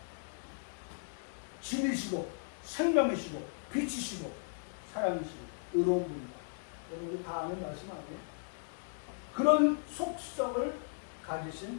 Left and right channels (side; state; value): right; silent; digital silence